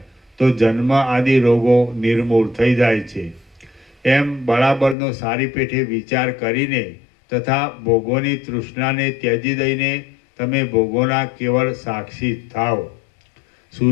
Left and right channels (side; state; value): right; drops out; at 5.0 s